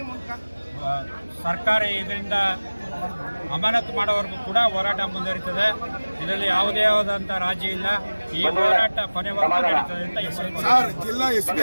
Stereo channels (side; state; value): both; inverted; correlation -1.00